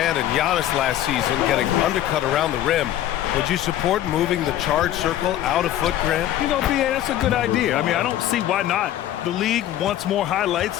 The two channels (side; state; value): right; quieter; 12.5 dB